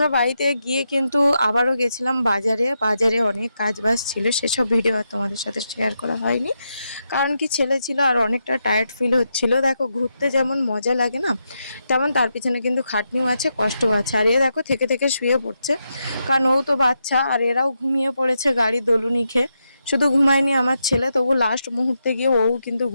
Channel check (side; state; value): both; inverted; correlation -0.84